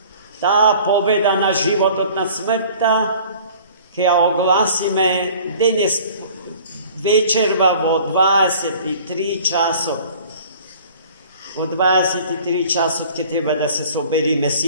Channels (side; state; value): both; inverted; correlation -0.48